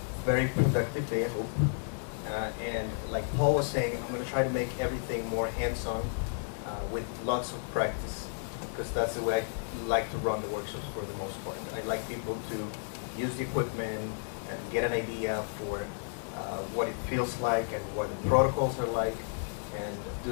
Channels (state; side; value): silent; right; digital silence